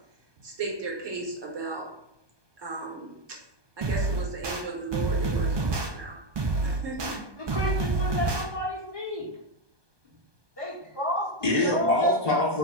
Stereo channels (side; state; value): left; late; 1.2 ms